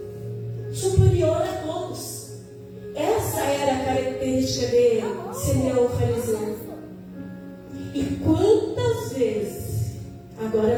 superior a todos. Essa era a característica de Simeão o fariseu. E quantas vezes,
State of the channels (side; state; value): both; identical; correlation 1.00